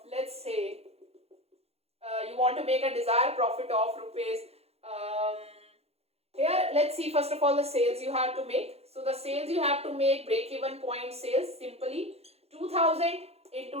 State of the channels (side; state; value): left; late; 0.30 ms